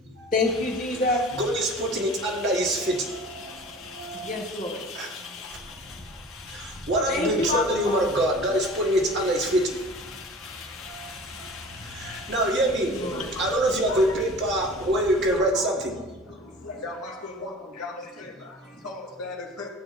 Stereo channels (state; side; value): normal; both; correlation 0.42